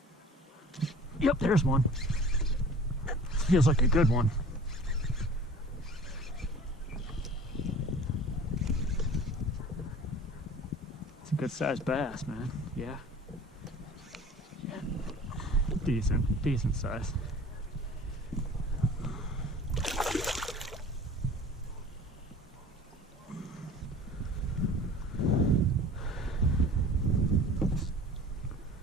Yep, there's one. Feels like a good one. It's a good sized bass, man. Yeah. Yeah. Decent size.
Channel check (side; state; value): both; normal; correlation 0.44